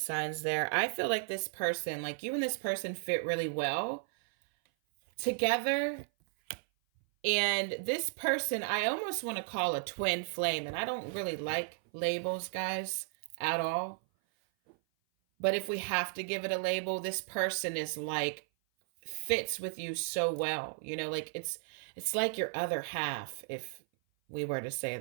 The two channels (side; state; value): left; silent; 55 dB below the other